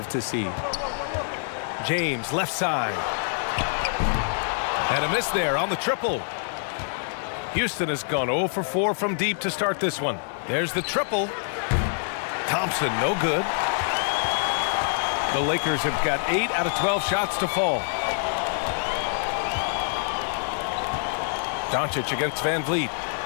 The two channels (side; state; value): right; silent; 61 dB below the other